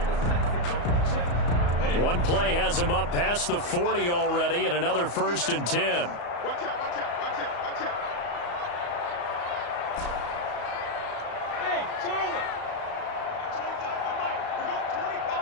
One play has him up past the 40 already, and another 1st and 10. Watch out, watch out, watch out, watch out. Hey, Charlie. 25 to the mic. We're going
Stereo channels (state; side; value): late; right; 34 ms